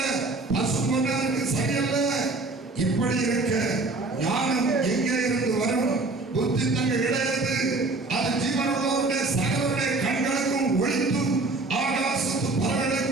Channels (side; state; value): left; quieter; 3.3 dB